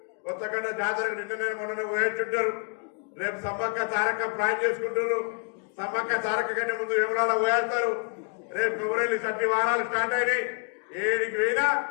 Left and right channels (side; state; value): right; quieter; 38.7 dB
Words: కొత్తగడ్డ జాతరకు నిన్ననే మొన్న పోయేట్టుంటారు. రేపు సమ్మక్క తారక ప్లాన్ చేసుకుంటారు. సమ్మక్క తారక కంటే ముందు విమలాల పోయేస్తారు. రేపు ఫిబ్రవరి 30 వారాలు స్టార్ట్ అయినాయి. 7కి పోయినా